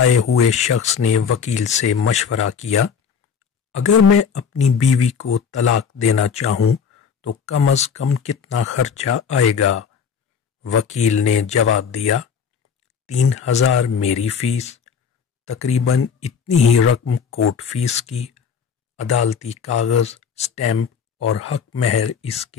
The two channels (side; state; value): right; quieter; 6.6 dB